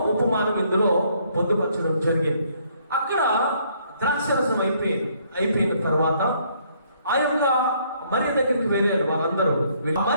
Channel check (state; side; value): inverted; both; correlation -0.66